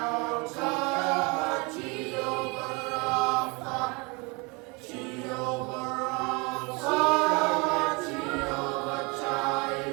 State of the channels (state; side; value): quieter; left; 28.8 dB